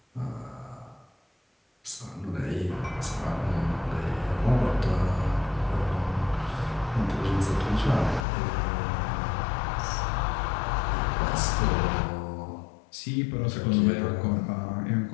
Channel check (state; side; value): drops out; right; at 8.2 s